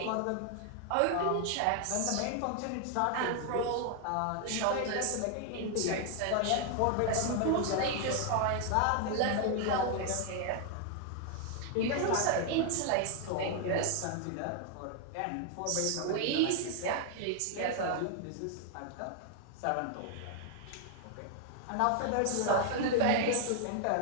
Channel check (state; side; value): different; both; correlation 0.00